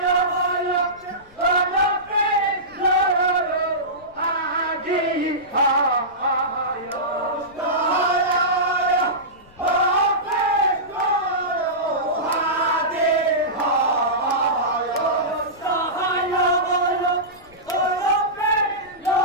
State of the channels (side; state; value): left; noise; rumble, 27 dB below the sound